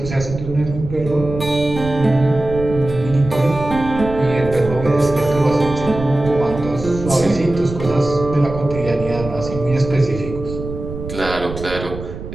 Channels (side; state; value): right; noise; rumble, 10 dB below the sound